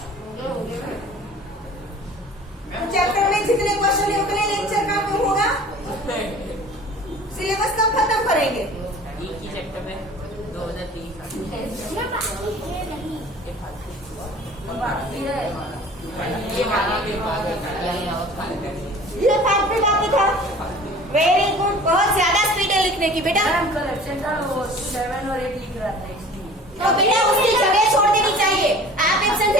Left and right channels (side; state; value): both; normal; correlation 0.44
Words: चैप्टर में जितने क्वेश्चन है उतने लेक्चर का क्यों होगा? सिलेबस कब खत्म करेंगे? एक ही चैप्टर में 2030 ये पार्ट भी बाकी था। वेरी गुड, बहुत ज्यादा स्पीड है लिखने की बेटा। 7 और 8 लिख रहा था इसलिए। तो बेटा उसकी जगह छोड़ देनी चाहिए। आप एब्सेंट